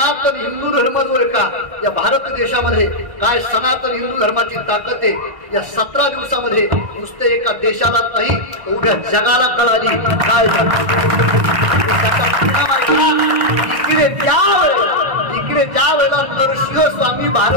हिंदू धर्म जो आहे का या भारत देशामध्ये काय सनातन हिंदू धर्माची ताकद आहे या 17 दिवसामध्ये नुसते एका देशाला नाही उभ्या जगाला कळाली. काय इकडे ज्या वेळेला नरसिंह स्वामी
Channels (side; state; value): left; late; 1.6 ms